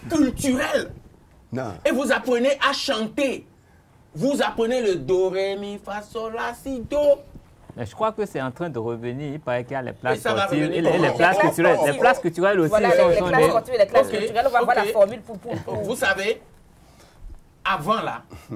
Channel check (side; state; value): both; identical; correlation 1.00